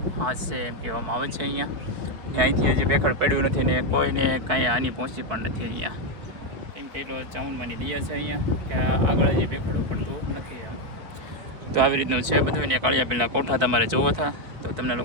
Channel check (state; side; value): late; left; 4.7 ms